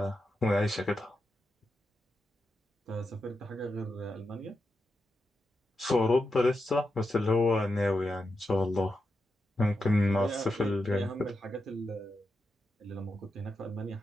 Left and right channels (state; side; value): normal; both; correlation 0.87